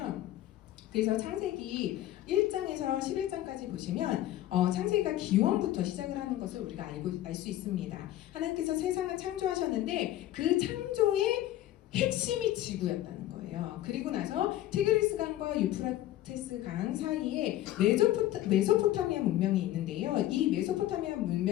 그래서 창세기 1장에서 11장까지 보시면 창세기가 기원부터 시작을 하는 것을 우리가 알 수 있습니다. 하나님께서 세상을 창조하셨는데 그 창조의 핵심이 지구였다는 거예요. 그리고 나서 티그리스 강과 유프라테스 강 사이에 메소포타미아 문명이 있는데요. 이 메소포타미아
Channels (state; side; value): quieter; right; 14.0 dB